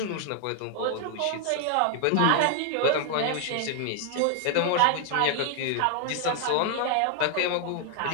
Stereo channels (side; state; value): both; different; correlation 0.00